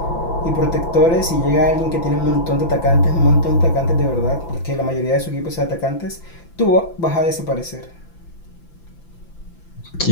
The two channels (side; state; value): right; late; 5.9 ms